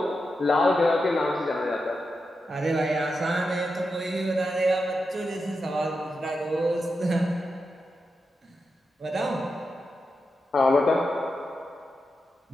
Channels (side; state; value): both; normal; correlation 0.88